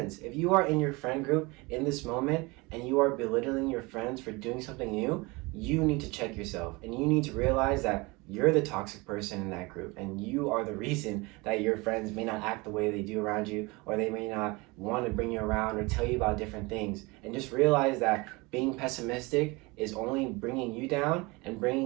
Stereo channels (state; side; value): quieter; left; 25.0 dB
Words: If you are in your friend group in this moment and you are belittling your friends for doing something new, you need to check yourself and you need to realize that you're the toxic person in that group and you are the reason that your friends may not act the way they do around you, or they may not want to bring you around or tell you about different things. And just realize that being pessimistic is only bringing you down and